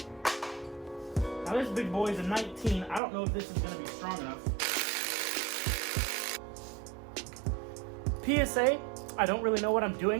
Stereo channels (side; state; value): left; drops out; at 3.0 s